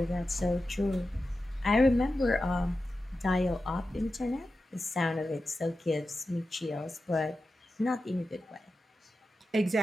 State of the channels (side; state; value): both; normal; correlation 0.92